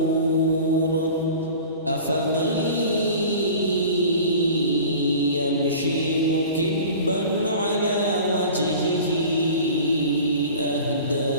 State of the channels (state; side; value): inverted; both; correlation -0.40